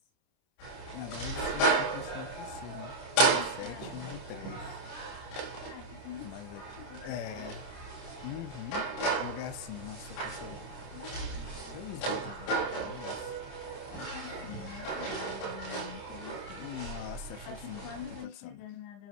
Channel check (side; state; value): right; late; 30 ms